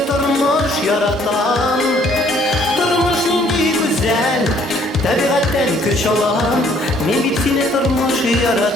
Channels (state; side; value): normal; both; correlation 0.62